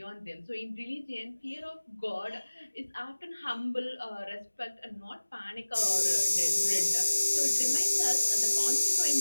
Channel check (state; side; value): inverted; both; correlation -1.00